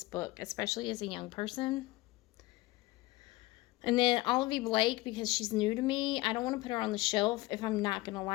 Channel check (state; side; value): quieter; right; 20.1 dB